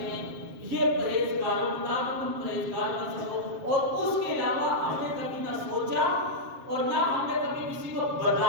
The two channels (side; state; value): left; late; 7.4 ms